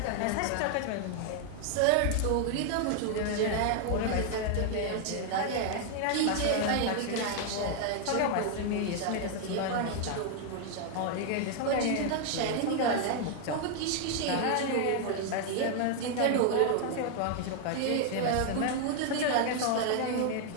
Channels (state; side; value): different; both; correlation 0.00